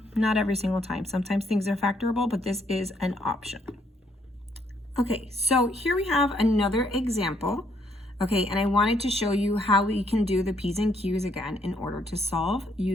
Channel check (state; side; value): normal; both; correlation 0.70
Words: Not every single time. Sometimes things are factorable, but this is an option. Okay, so here we have another example. Okay, and I wanted to show you how we can do the P's and Q's again in order to solve